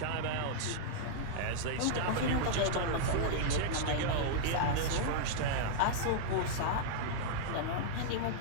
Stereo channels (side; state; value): both; different; correlation -0.02